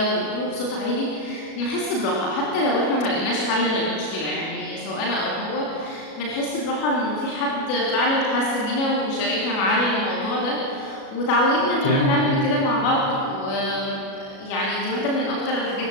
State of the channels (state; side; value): late; right; 37 ms